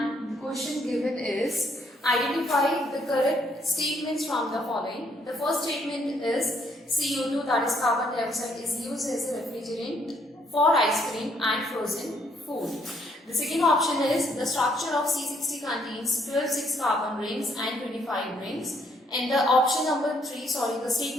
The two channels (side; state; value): both; normal; correlation 0.70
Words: the question given is identify the correct statements from the following. The first statement is CO2, that is carbon dioxide, is used as a refrigerant for ice cream and frozen food. The second option is the structure of C60 contains 12 6-carbon rings and 25 rings. And the option number 3, the